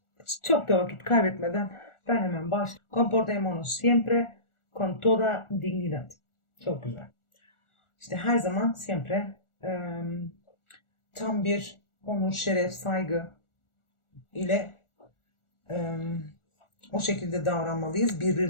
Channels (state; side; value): late; right; 1.4 ms